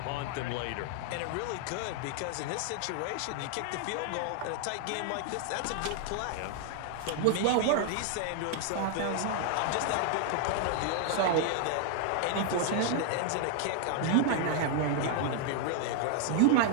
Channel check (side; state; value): both; different; correlation 0.00